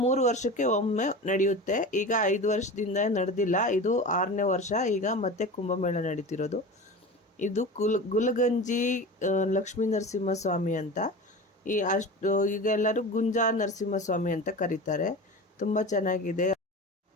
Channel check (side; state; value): both; normal; correlation 0.31